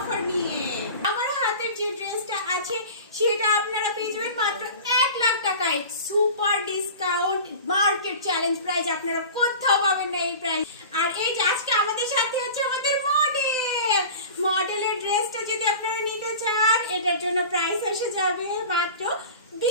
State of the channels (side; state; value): both; inverted; correlation -0.37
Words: নিয়ে। আমার হাতের যে ড্রেসটা আছে সেটা আপনারা পেয়ে যাবেন মাত্র 1 লাখ টাকায়। Super discount, market challenge price, আপনারা কোথাও পাবেন না এই প্রাইস। আর এই যে আজকে আমাদের সাথে হচ্ছে আমাদের মডেলের ড্রেসটা যদি আপনারা নিতে চান এটার জন্য প্রাইস এসে যাবে মাত্র